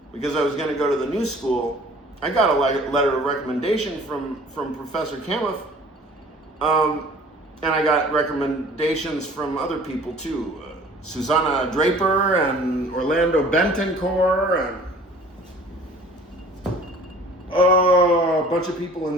because I was going to go to the new school, I got a letter of recommendation from Professor Kamuth, and I got recommendations from other people too. Susanna Draper and Orlando Bentoncourt and a bunch of people in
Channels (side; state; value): both; normal; correlation 0.49